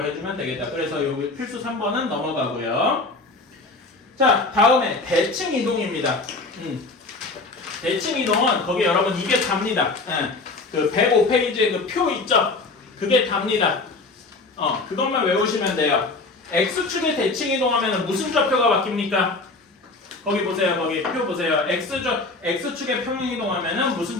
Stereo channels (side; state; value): right; quieter; 3.5 dB